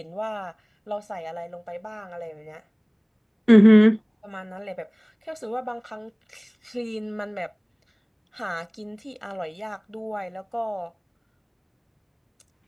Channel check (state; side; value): identical; both; correlation 1.00